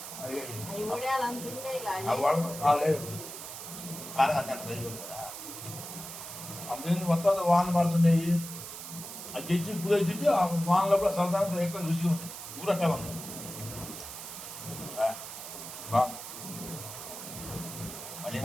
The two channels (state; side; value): noise; right; hiss, 10 dB below the sound